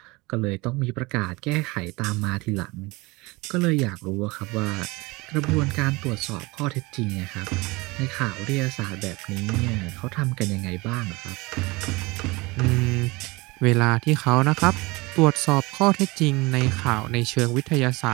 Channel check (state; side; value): quieter; left; 23.8 dB